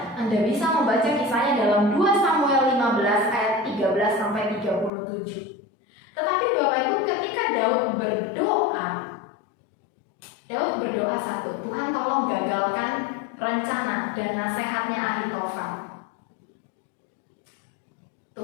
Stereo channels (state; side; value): drops out; right; at 4.9 s